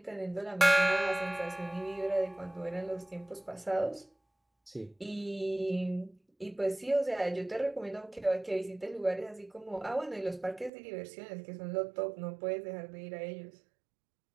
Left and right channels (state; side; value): drops out; left; at 10.7 s